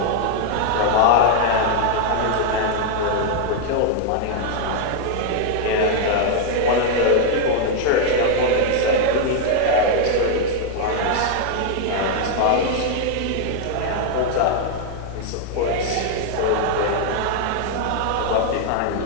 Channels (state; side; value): different; both; correlation 0.00